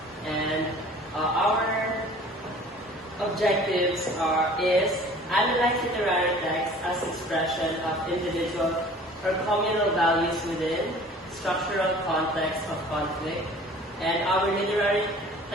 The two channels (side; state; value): both; normal; correlation 0.47